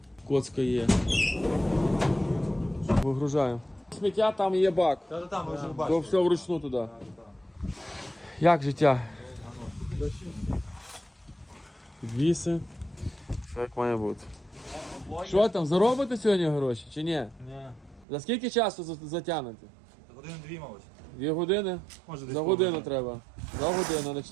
Коцка є. Вигружаємо. Сміття, там є бак. Та-та-та, ми вже То бачимо. все вручну туди. Як життя? Підвіси. Все як має бути. Що там, заробите сьогодні гроші чи ні? Ні. За скільки часу затягнете? Години-дві, мабуть. 2 години? Може, десь За годину треба. За годину, на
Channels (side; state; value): left; drops out; at 18.1 s